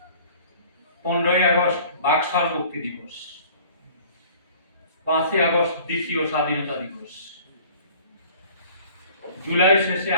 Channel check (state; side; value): inverted; both; correlation -0.49